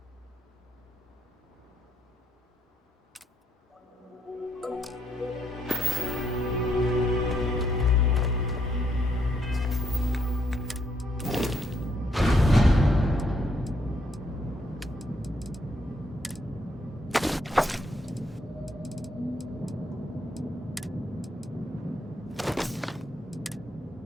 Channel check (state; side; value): normal; both; correlation 0.74